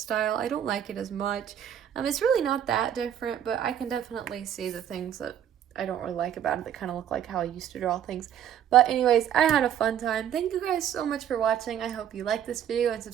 I don't like it as much. It's really not that different, but I can definitely see the things that I don't really like about it that kind of look like how I used to draw things. But anyways, I had a fun time. Thank you guys so much for watching. I hope you liked this video and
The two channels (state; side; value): quieter; left; 9.9 dB